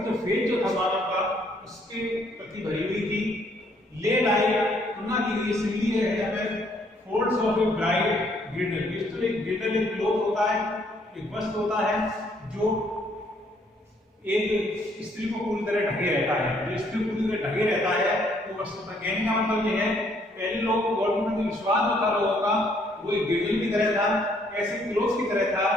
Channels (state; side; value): normal; both; correlation 0.67